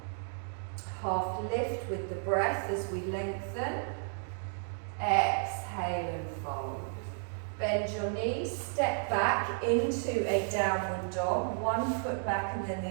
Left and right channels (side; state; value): left; silent; 56 dB below the other